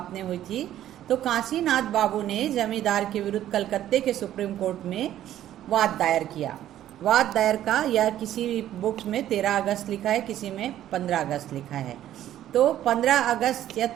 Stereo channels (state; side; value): quieter; left; 12.2 dB